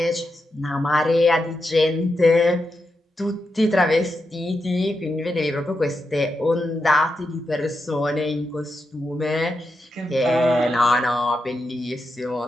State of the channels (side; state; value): both; normal; correlation 0.86